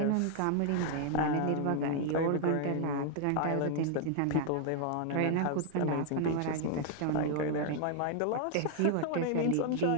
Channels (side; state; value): both; different; correlation 0.00